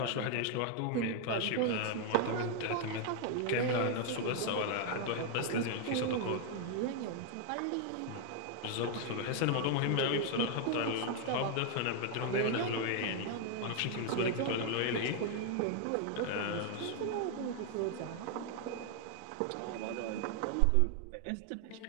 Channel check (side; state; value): both; different; correlation 0.00